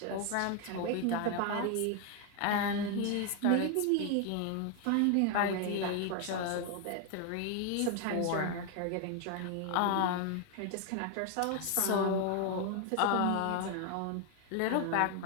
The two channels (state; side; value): different; both; correlation 0.01